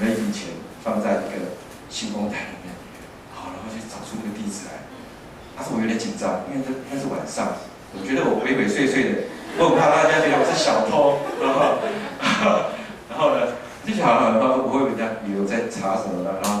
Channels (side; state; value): both; identical; correlation 1.00